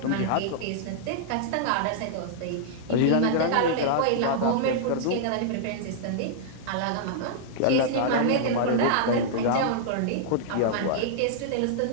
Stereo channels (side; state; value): both; different; correlation -0.02